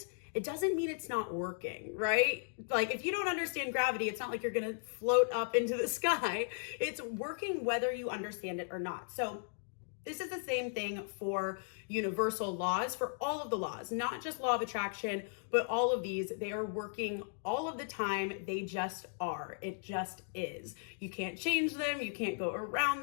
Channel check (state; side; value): silent; right; digital silence